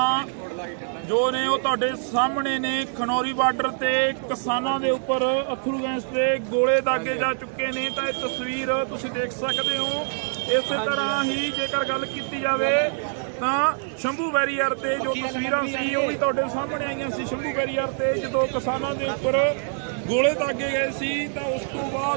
ਜੋ ਨੇ ਉਹ ਤੁਹਾਡੇ ਸਾਹਮਣੇ ਨੇ। ਖਨੌਰੀ ਬਾਰਡਰ ਤੇ ਕਿਸਾਨਾਂ ਦੇ ਉੱਪਰ ਅਥਰੂ ਗੈਸ ਦੇ ਗੋਲੇ ਦਾਗੇ ਜਾ ਚੁੱਕੇ ਨੇ। ਤਾਂ ਇਹ ਤਸਵੀਰ ਤੁਸੀਂ ਦੇਖ ਸਕਦੇ ਹੋ। ਇਸੇ ਤਰ੍ਹਾਂ ਹੀ ਜੇਕਰ ਗੱਲ ਕੀਤੀ ਜਾਵੇ ਤਾਂ ਸ਼ੰਭੂ ਬੈਰੀਅਰ ਤੇ ਜੋ ਤਸਵੀਰਾਂ ਸੀ ਉਹ ਵੀ ਤੁਹਾਡੇ ਸਾਹਮਣੇ ਆਈਆਂ ਸੀ। ਸ਼ੰਭੂ ਬੈਰੀਅਰ ਤੇ ਜਦੋਂ ਕਿਸਾਨਾਂ ਦੇ ਉੱਪਰ ਗੋਲੇ ਦਾਗੇ ਗਏ ਸੀ ਤਾਂ ਉਸ ਤੋਂ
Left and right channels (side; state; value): left; silent; 62 dB below the other